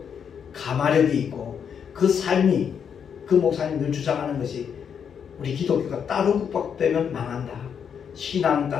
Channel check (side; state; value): right; quieter; 7.5 dB